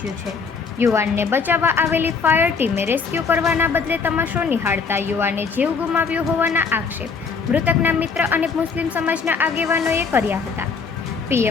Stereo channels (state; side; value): quieter; right; 5.2 dB